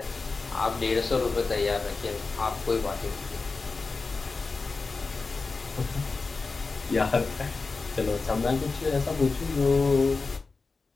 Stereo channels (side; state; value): right; quieter; 4.1 dB